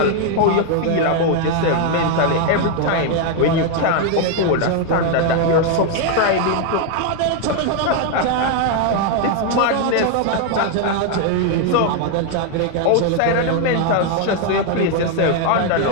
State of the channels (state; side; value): different; both; correlation 0.01